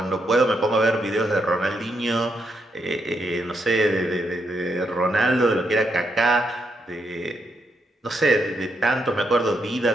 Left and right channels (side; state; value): both; normal; correlation 0.79